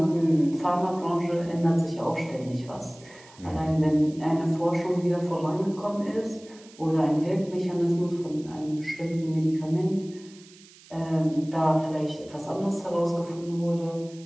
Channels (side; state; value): right; noise; hiss, 23 dB below the sound